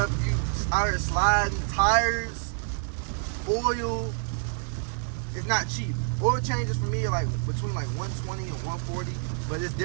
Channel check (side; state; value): left; silent; digital silence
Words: you out here sliding, tires, oil, it's not cheap. Oil changes for me are like between like 120 and 140, but it's